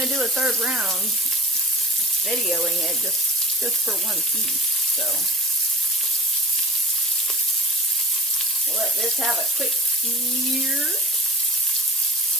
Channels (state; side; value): normal; both; correlation 0.36